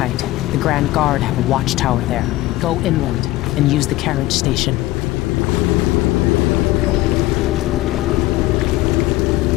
The Grand Guard have a watchtower there. Go inland and use the carriage station.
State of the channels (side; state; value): right; quieter; 17.7 dB